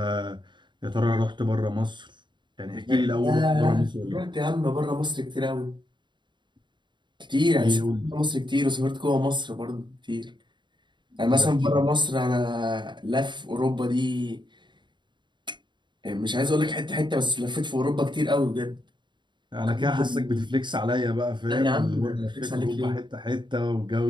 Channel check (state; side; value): late; left; 0.22 ms